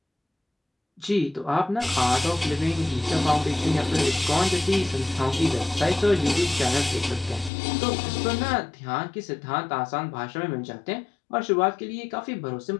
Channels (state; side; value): drops out; right; at 7.5 s